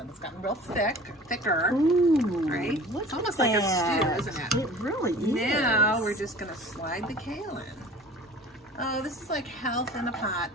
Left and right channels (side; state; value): both; normal; correlation 0.43